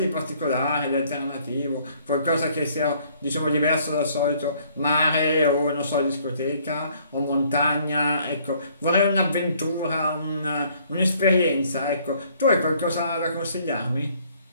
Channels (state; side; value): inverted; both; correlation -0.62